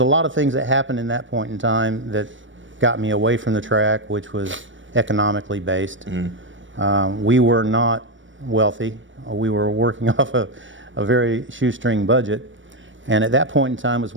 lot of things that happened in that point in time that got me away from the track, which was economically based. We were not wealthy. We were working off a very shoestring budget, and at that point in time was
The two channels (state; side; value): late; left; 0.56 ms